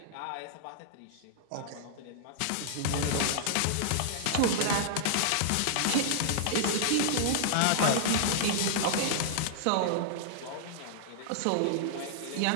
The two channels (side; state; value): both; different; correlation -0.01